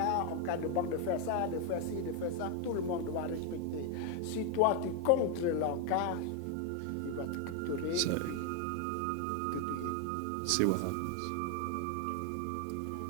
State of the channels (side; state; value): both; different; correlation 0.01